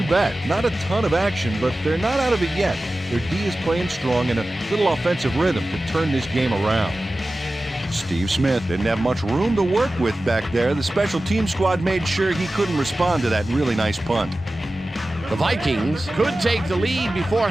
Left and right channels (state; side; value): normal; both; correlation 0.95